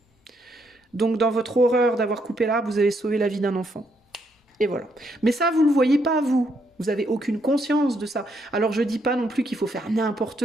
Donc dans votre horreur d'avoir coupé l'arbre, vous avez sauvé la vie d'un enfant. Et voilà. Mais ça, vous ne le voyez pas, vous. Vous n'avez aucune conscience de ça. Alors je dis pas non plus qu'il faut faire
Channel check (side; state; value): both; normal; correlation 0.75